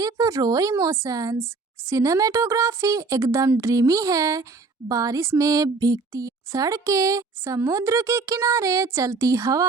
रो इमोशंस। सिनेमेटोग्राफी एकदम ड्रीमी है। बारिश में भीगती सड़कें, समुद्र के किनारे चलती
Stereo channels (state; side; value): quieter; left; 4.2 dB